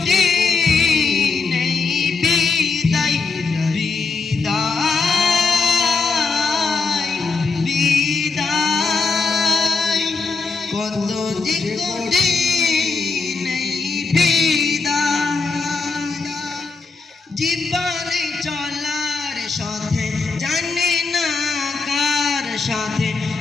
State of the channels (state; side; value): quieter; right; 4.4 dB